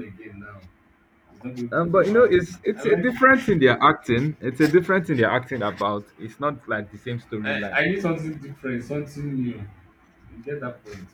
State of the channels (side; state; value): both; identical; correlation 1.00